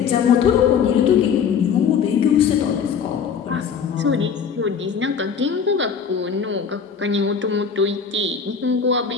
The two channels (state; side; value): quieter; right; 6.8 dB